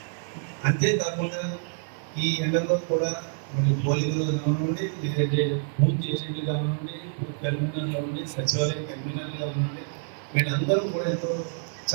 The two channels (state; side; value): silent; left; digital silence